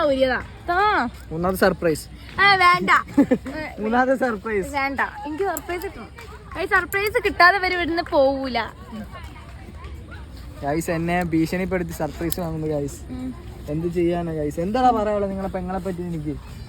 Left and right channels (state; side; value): identical; both; correlation 1.00